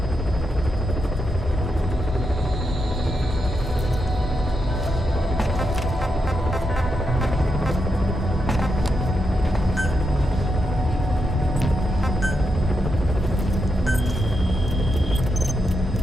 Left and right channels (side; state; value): both; normal; correlation 0.84